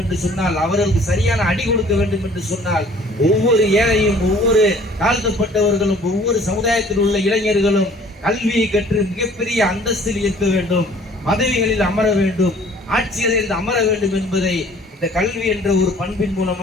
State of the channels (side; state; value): both; normal; correlation 0.53